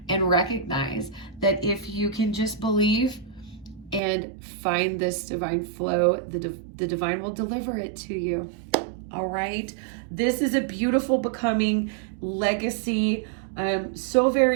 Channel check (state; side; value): drops out; left; at 4.0 s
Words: and recognize that if you can just believe and find this divine flow, the divine will deliver it to you. All right. This is a beautiful becoming legacy. So